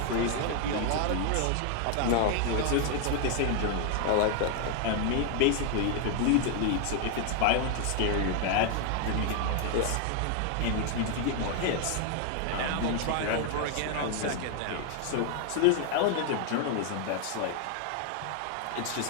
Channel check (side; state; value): both; different; correlation 0.00